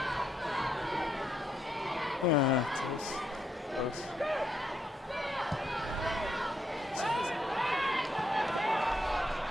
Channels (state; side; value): normal; both; correlation 0.77